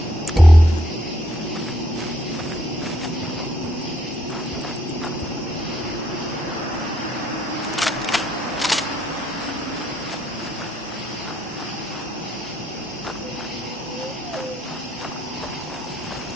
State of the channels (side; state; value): both; normal; correlation 0.72